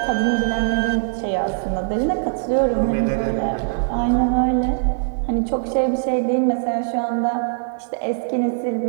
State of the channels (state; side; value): silent; left; digital silence